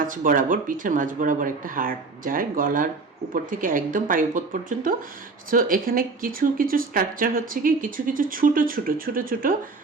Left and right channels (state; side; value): quieter; left; 4.0 dB